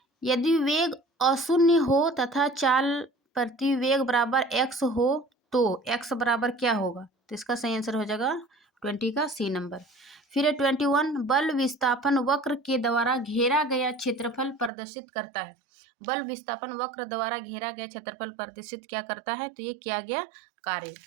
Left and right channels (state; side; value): drops out; left; at 14.7 s